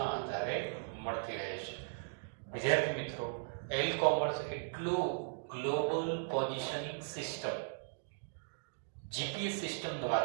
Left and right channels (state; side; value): silent; left; digital silence